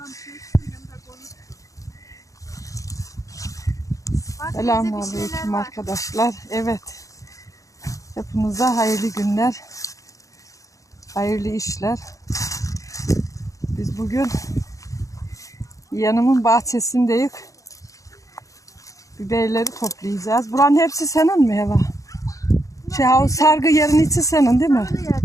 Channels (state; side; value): late; right; 0.16 ms